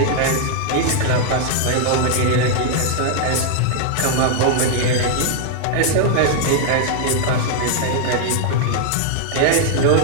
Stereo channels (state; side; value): different; both; correlation 0.00